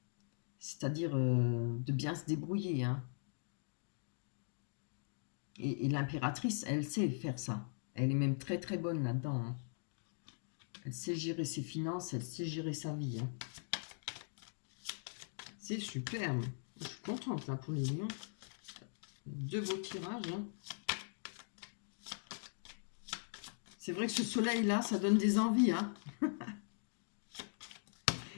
C'est-à-dire de bien se débrouiller. Hein. Et l'impératrice, elle sait faire ça. Elle est même très très bonne là-dedans. Hein. Elle sait gérer ses finances, elle sait gérer sa vie. Hein. C'est superbe. Je suis contente là pour les lions. Deux beaux tirages. Hein. C'est vrai que ce soleil-là, ça donne des envies. Hein.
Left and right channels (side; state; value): right; silent; digital silence